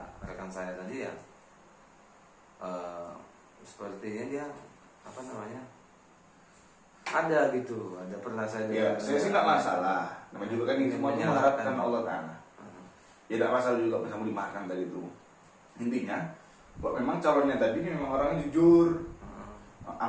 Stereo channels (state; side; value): identical; both; correlation 1.00